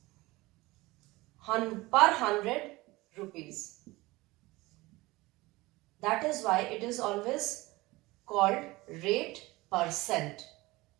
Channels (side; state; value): left; quieter; 20.8 dB